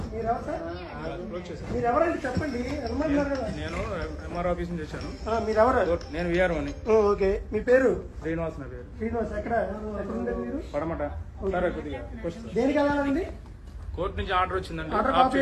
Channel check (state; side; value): identical; both; correlation 1.00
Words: మీరెవరండి చెప్పండి. నేను ఎంఆర్ ఆఫీస్ నుంచి వచ్చాను. మీరెవరు? నేను విఆర్ఓని. ఓకే, మీ పేరు? శ్రీనివాస్ నా పేరు. శ్రీనివాస్. ఎక్కడ ఉండేది మీరు? పడమట. దేనికి వెళ్ళాలండి? కోర్టు నుంచి ఆర్డర్ వచ్చిందండి. ఆర్డర్ కాపీ